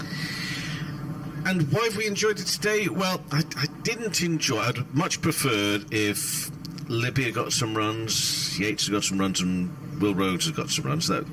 And why have we enjoyed it today? Well, I didn't enjoy. I'd much preferred if Libby had got some runs, Yates had got some runs, and Will Rhodes had got some runs.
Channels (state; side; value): identical; both; correlation 1.00